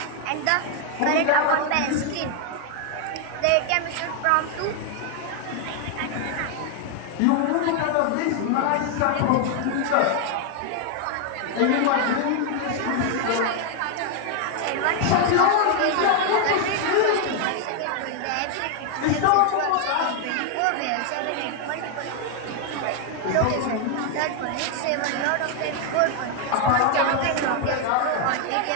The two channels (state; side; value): different; both; correlation 0.00